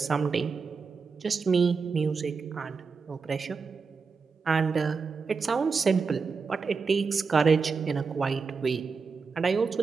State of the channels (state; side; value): quieter; left; 5.0 dB